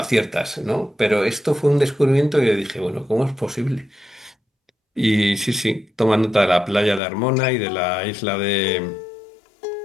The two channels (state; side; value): drops out; right; at 7.0 s